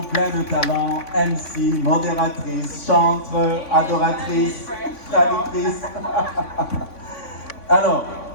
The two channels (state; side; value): late; right; 3.5 ms